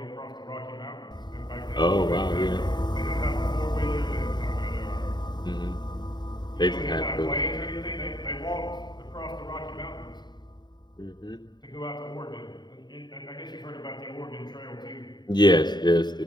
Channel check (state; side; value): late; right; 0.21 ms